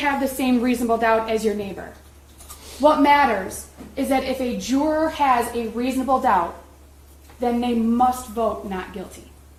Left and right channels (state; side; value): identical; both; correlation 1.00